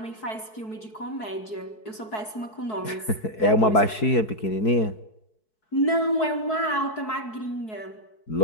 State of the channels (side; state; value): right; late; 4.6 ms